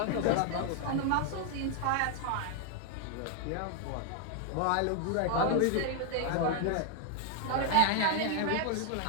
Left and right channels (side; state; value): both; different; correlation 0.00